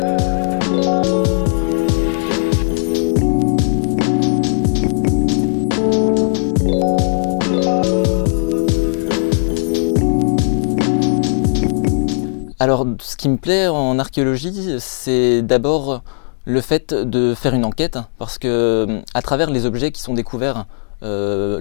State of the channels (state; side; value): silent; right; digital silence